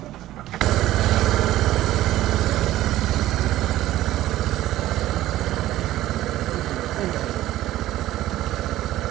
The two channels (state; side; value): quieter; left; 14.7 dB